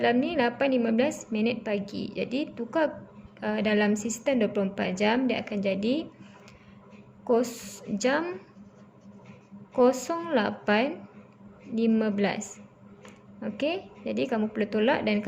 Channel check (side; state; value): both; identical; correlation 1.00